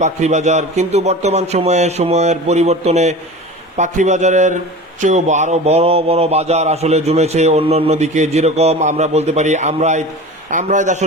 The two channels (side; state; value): both; normal; correlation 0.34